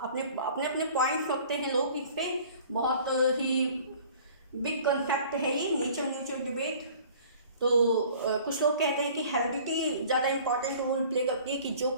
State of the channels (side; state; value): both; inverted; correlation -0.49